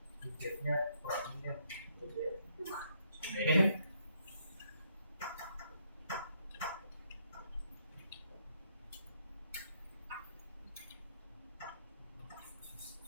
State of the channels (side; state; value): both; inverted; correlation -0.72